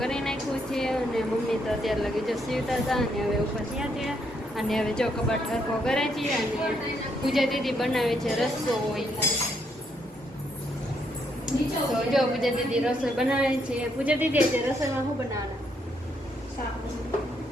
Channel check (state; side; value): normal; both; correlation 0.74